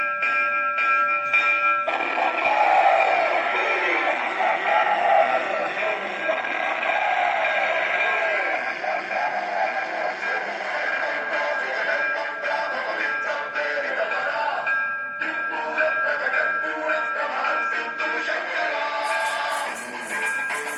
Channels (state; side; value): identical; both; correlation 1.00